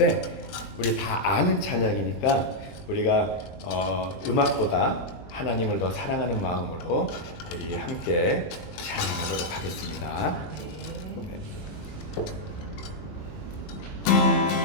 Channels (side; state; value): right; late; 21 ms